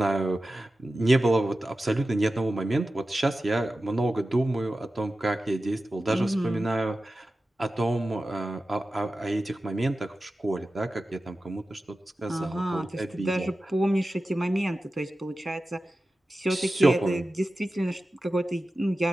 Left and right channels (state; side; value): normal; both; correlation 0.94